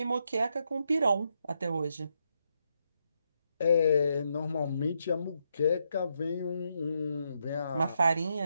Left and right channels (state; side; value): inverted; both; correlation -0.79